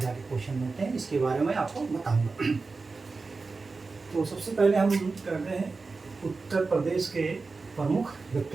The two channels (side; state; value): left; quieter; 4.1 dB